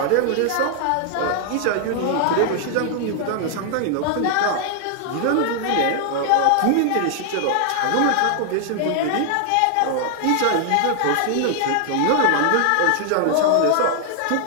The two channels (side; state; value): both; different; correlation 0.00